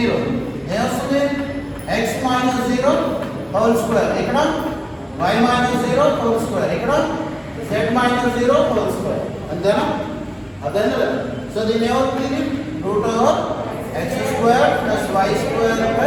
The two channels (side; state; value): both; identical; correlation 1.00